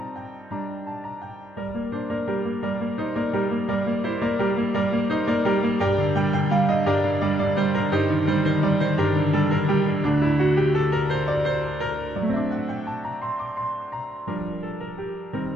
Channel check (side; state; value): both; normal; correlation 0.74